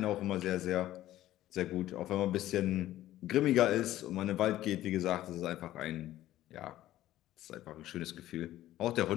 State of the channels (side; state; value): right; quieter; 14.3 dB